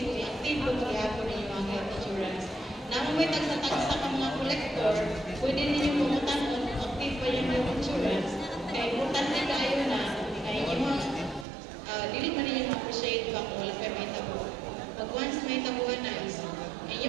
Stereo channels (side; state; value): left; drops out; at 11.5 s